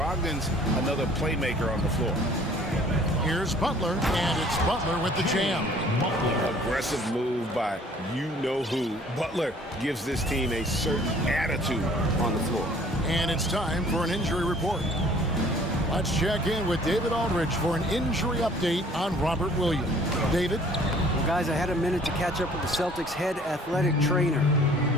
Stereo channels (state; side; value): normal; both; correlation 0.54